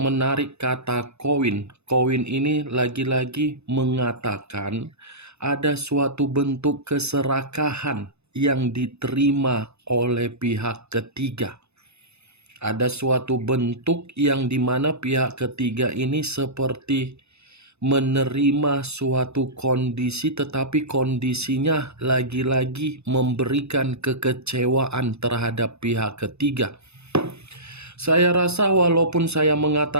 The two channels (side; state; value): left; late; 0.80 ms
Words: kata koin, koin ini lagi-lagi mengatakan ada suatu bentuk keserakahan yang diterima oleh pihak ketiga. Ada suatu bentuk yang dimana pihak ketiga ini seperti menerima suatu kondisi, tetapi kondisinya lagi-lagi memberikan kekecewaan terhadap pihak ketiga. Saya rasa walaupun saya